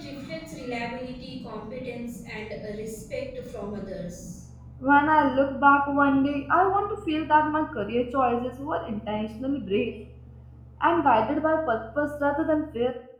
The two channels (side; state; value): both; identical; correlation 1.00